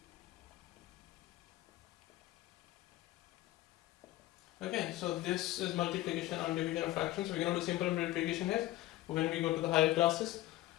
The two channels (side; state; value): right; quieter; 16.4 dB